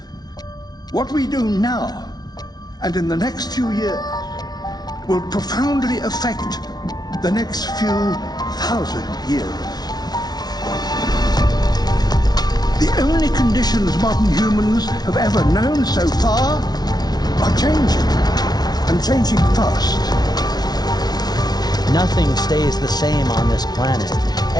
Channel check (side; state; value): right; late; 0.19 ms